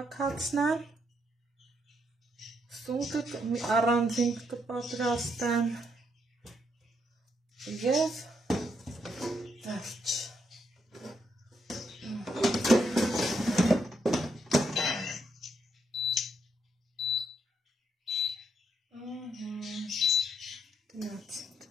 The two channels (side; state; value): both; normal; correlation 0.77